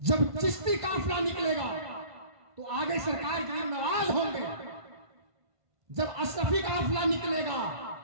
चिश्ती काफिला निकलेगा तो आगे सरकार गरीब नवाज होंगे। जब अशरफी काफिला निकलेगा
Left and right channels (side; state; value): left; late; 1.5 ms